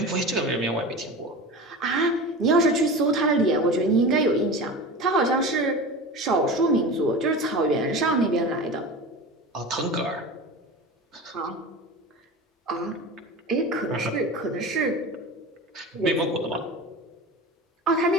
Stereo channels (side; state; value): both; normal; correlation 0.31